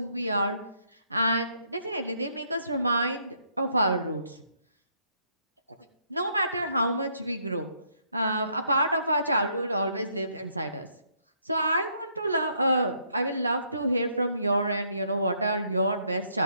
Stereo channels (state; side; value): inverted; both; correlation -0.71